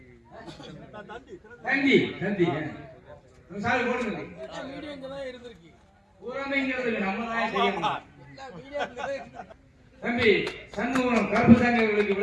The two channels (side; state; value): both; identical; correlation 1.00